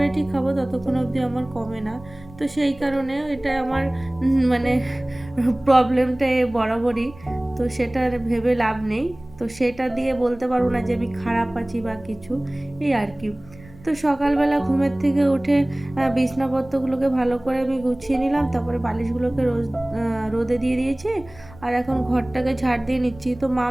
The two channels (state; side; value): noise; right; rumble, 21 dB below the sound